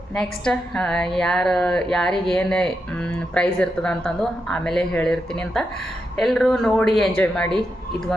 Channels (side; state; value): both; normal; correlation 0.86